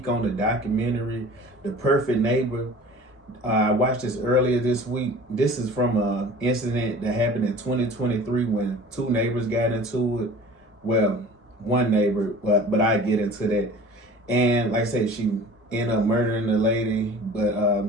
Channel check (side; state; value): both; normal; correlation 0.43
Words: on the documentary, The Perfect Neighbor. I watched this earlier this week. This is from an incident that happened in 2023 when two neighbors got into it. Well, one neighbor, but I get into that. And like I said, she ended up murdering the lady, but